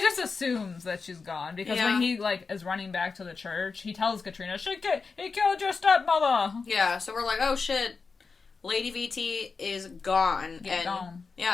just assumes that she's gone because when he like is running back to the church, he tells Katrina, he killed your stepmother. Yeah, so we're like, oh shit, Lady VT is gone. Gone.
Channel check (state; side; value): quieter; right; 4.7 dB